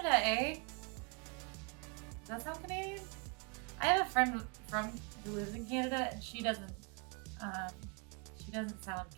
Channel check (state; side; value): quieter; left; 33.6 dB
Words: eh? Does that sound Canadian? I have a friend who lives in Canada, and she doesn't sound